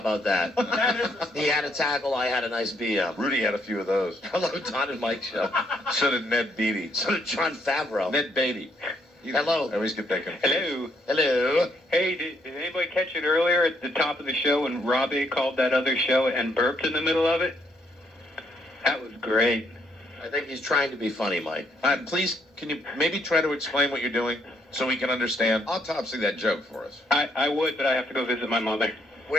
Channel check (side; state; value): both; normal; correlation 0.72